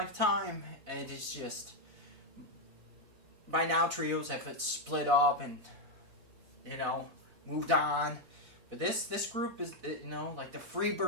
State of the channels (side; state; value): left; late; 4.1 ms